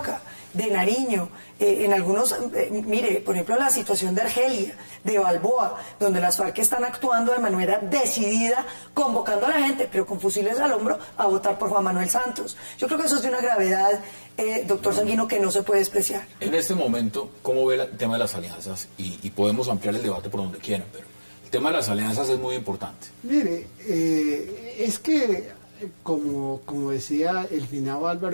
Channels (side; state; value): both; inverted; correlation -1.00